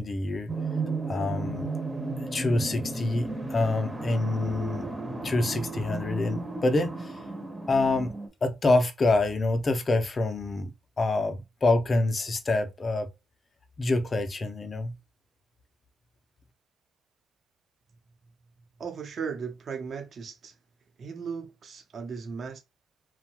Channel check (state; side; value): normal; both; correlation 0.87